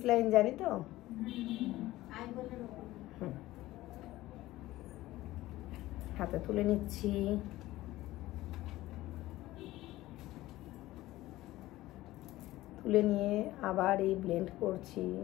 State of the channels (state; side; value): quieter; right; 16.9 dB